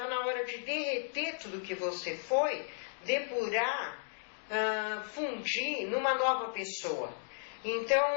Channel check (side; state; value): right; silent; digital silence